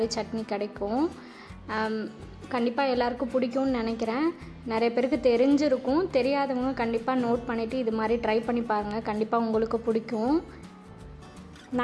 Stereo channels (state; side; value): identical; both; correlation 1.00